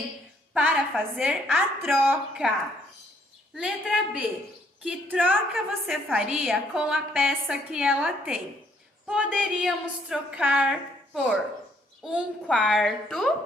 para fazer a troca. Letra B. Que troca você faria com a peça que ela tem? Poderíamos trocar por 1/4,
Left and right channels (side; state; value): both; normal; correlation 0.67